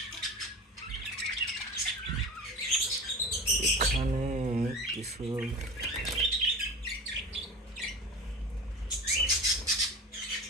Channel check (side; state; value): both; normal; correlation 0.33